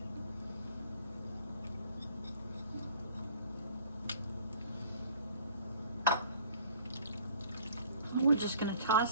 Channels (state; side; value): inverted; both; correlation -0.53